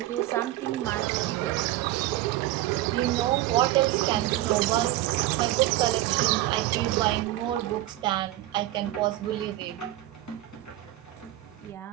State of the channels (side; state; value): left; quieter; 15.5 dB